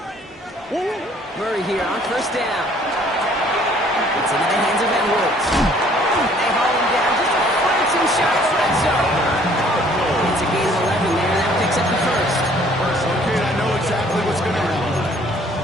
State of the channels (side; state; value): both; normal; correlation 0.58